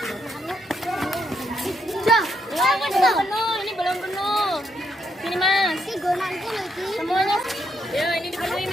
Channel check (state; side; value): normal; both; correlation 0.77